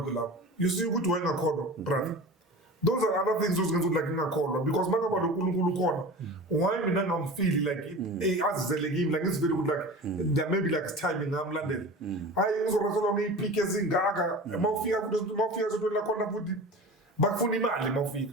lapha you see ukuthi wayengakholwa brother. Those are other things those like ngakholwa because makaba lo uNkulunkulu khona why mina ngamfeel like azizele kimi like it's very good like there maybe like timing ngamlandela hayi ngizorasela ngiyipike ezingaka mawufika so la khona futhi bakufuna imali mawufika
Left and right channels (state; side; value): normal; both; correlation 0.34